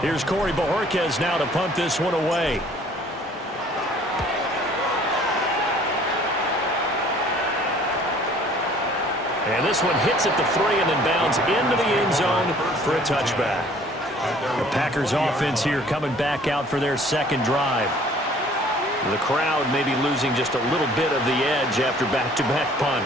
Here's Corey Bojorquez now to punt this one away. And this one hits at the 3 and then bounds into the end zone for a touchback. The Packers offense here coming back out for their 2nd drive. The crowd may be losing just a little bit of the edge after back-to-back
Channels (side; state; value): both; normal; correlation 0.55